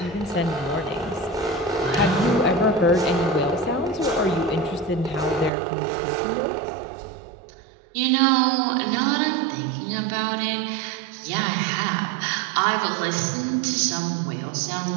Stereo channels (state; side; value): drops out; left; at 5.5 s